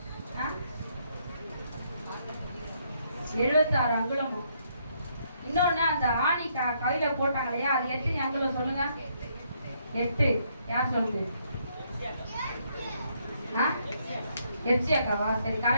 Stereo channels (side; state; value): both; inverted; correlation -0.72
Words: அங்குலமும். இன்னொன்னு, அந்த ஆணி கையில போட்டாங்க இல்லையா, அது எத்தனை அங்குலம் சொல்லுங்க? 8. யார் சொல்லுது? எச்சி அக்காவா? சரி,